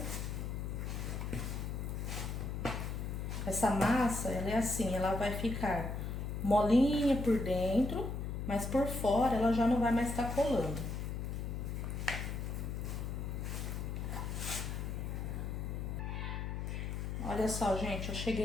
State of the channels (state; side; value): noise; left; hum, 3 dB below the sound